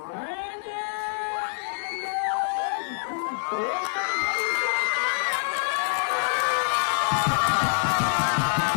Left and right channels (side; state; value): right; silent; 60 dB below the other